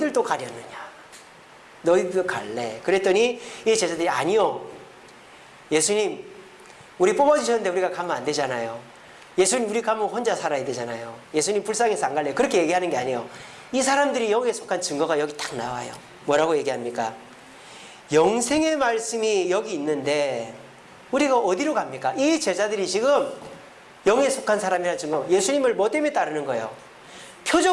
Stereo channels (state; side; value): identical; both; correlation 1.00